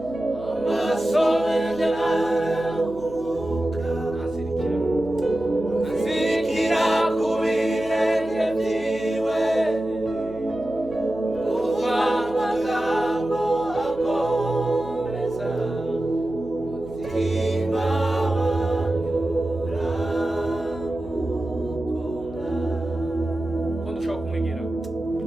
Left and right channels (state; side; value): noise; right; hum, 16 dB below the sound